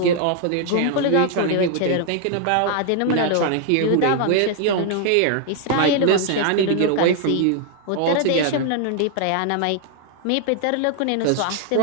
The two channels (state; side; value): different; both; correlation 0.00